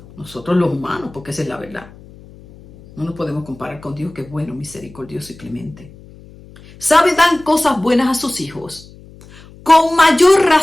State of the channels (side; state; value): left; noise; hum, 22 dB below the sound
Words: nosotros los humanos, porque esa es la verdad, no nos podemos comparar con Dios, que es bueno, misericordioso y clemente, sabe dar cosas buenas a sus hijos. Con mayor